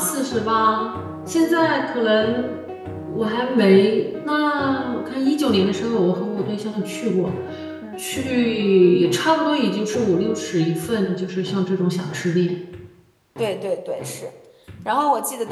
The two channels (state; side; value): identical; both; correlation 1.00